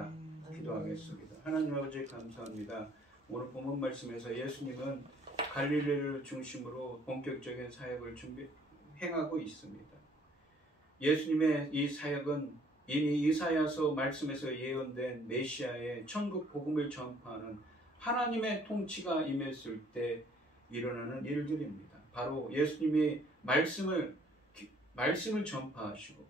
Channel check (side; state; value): both; normal; correlation 0.60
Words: 기도하겠습니다. 하나님 아버지 감사합니다. 오늘 본문 말씀에서 예수님은 갈릴리를 중심으로 본격적인 사역을 행하고 있습니다. 예수님의 이 사역은 이미 이사야서 말씀에서 예언된 메시아의 천국 복음을 전파하는 하나님의 통치가 임했을 때 일어나는 일들입니다. 바로 예수님이 말씀을 전파하시고